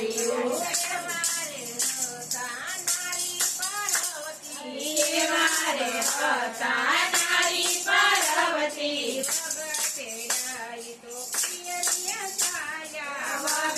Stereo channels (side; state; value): both; identical; correlation 1.00